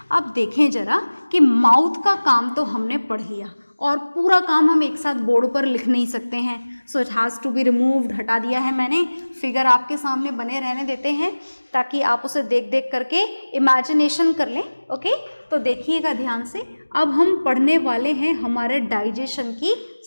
अब देखें जरा कि माउथ का काम तो हमने पढ़ लिया, और पूरा काम हम एक साथ बोर्ड पर लिख नहीं सकते हैं। So it has to be removed, हटा दिया है मैंने। फिगर आपके सामने बने रहने देते हैं ताकि आप उसे देख देख करके इमेजिनेशन कर लें। ओके, तो देखिएगा ध्यान से। अब हम पढ़ने वाले हैं हमारे डाइजेशन की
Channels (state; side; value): inverted; both; correlation -1.00